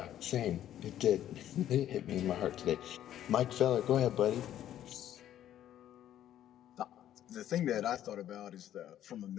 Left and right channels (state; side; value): quieter; right; 11.5 dB